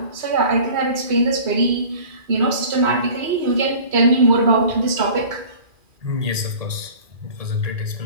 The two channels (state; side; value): late; left; 2.4 ms